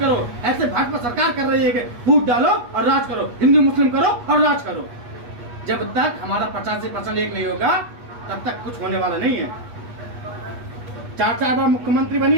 ऐसे भाजपा सरकार कर रही है कि फूट डालो और राज करो, हिंदू मुस्लिम करो और राज करो। जब तक हमारा 85% एक नहीं होगा तब तक कुछ होने वाला नहीं है। 4 बार मुख्यमंत्री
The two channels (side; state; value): left; late; 8.3 ms